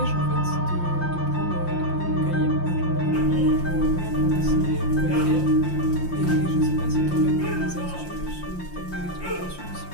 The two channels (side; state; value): right; late; 5.7 ms